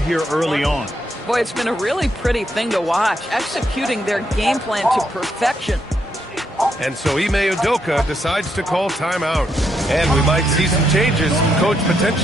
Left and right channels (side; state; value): both; normal; correlation 0.78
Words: early on. Boy, it's been a really pretty thing to watch, executing their game plan to perfection. And so Ime Udoka decides to call timeout. And we might see some changes. Coach